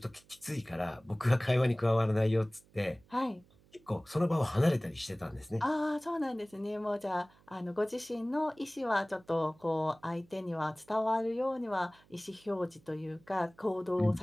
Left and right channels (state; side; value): noise; right; hum, 29 dB below the sound